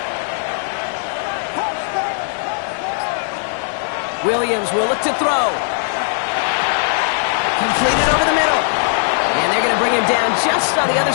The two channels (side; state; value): right; silent; digital silence